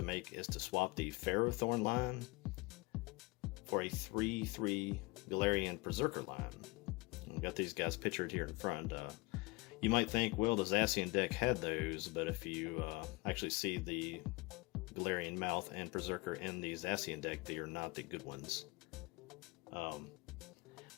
make is to swap the Ferrothorn line for a 3-3 Galarian Perrserker line. We've got these guys pictured here in front. You might think, well, the Zacian deck had those, but if you actually see the Galarian Meowth and Perrserker in the Zacian deck, they are not the good ones.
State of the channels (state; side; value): quieter; right; 24.7 dB